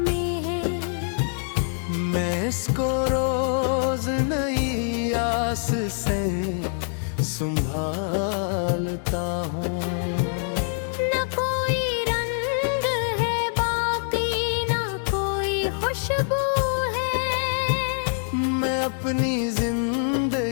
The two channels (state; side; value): silent; right; 62 dB below the other